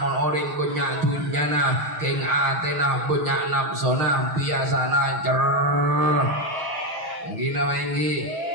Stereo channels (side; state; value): left; late; 6.3 ms